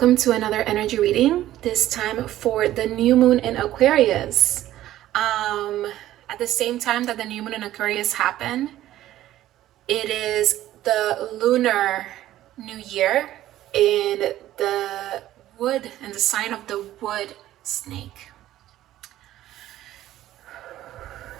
to another energy reading, this time for the new moon in Aquarius. At the same time that the new moon in Aquarius happened, it is the lunar new year in the wood, in the sign of the wood snake.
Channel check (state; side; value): quieter; left; 13.8 dB